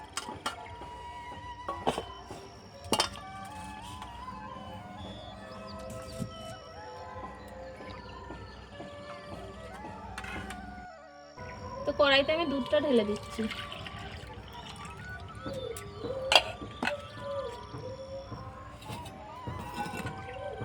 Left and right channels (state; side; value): identical; both; correlation 1.00